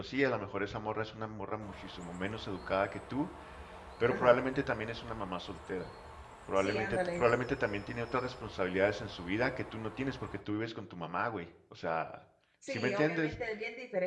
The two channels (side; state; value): both; identical; correlation 1.00